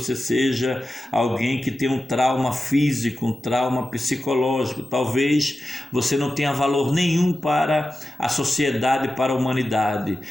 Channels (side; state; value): both; normal; correlation 0.93